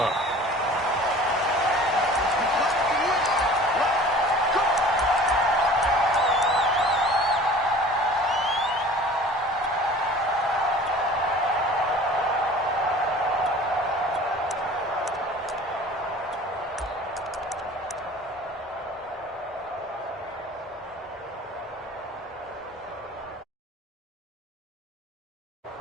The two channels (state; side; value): normal; both; correlation 0.44